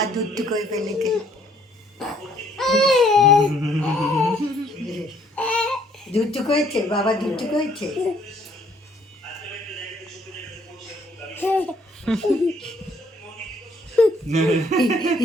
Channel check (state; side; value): normal; both; correlation 0.64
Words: দুধ করে ফেলেছে। দুধ করেছে বাবা, দুধ করেছে।